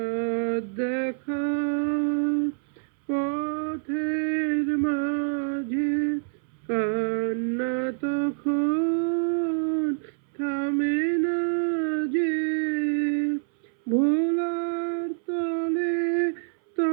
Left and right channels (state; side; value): silent; left; 61 dB below the other